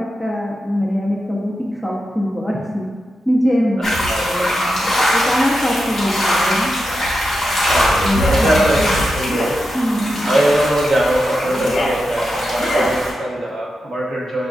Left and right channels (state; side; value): normal; both; correlation 0.89